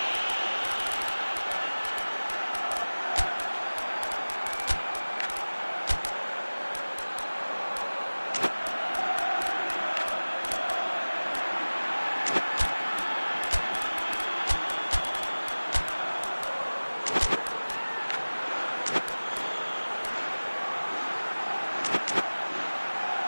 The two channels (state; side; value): inverted; both; correlation -1.00